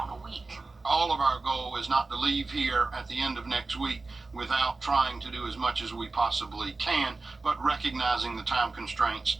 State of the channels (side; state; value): left; quieter; 3.6 dB